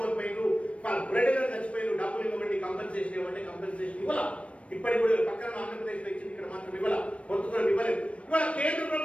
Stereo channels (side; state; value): right; late; 0.062 ms